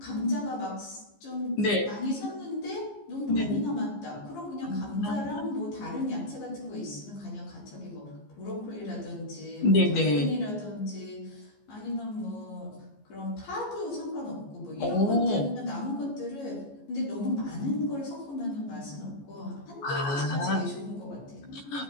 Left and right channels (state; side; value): late; right; 14 ms